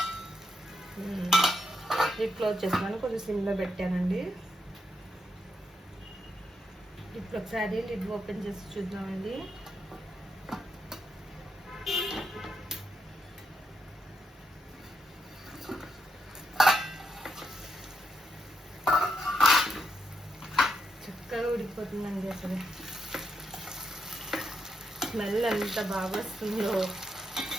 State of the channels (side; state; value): both; normal; correlation 0.80